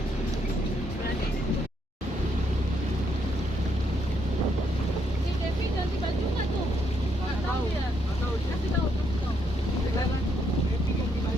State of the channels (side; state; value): both; normal; correlation 0.75